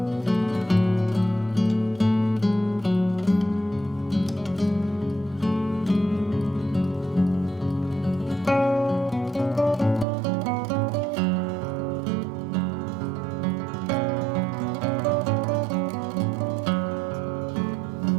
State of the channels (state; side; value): drops out; left; at 10.1 s